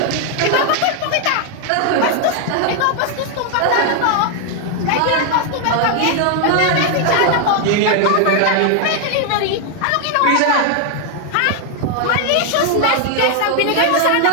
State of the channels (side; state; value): both; different; correlation 0.00